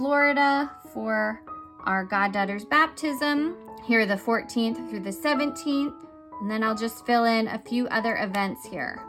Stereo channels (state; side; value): identical; both; correlation 1.00